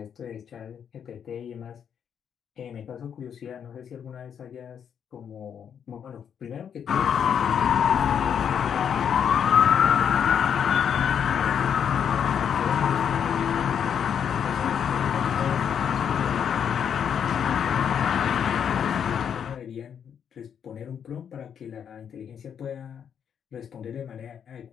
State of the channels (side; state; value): right; quieter; 8.0 dB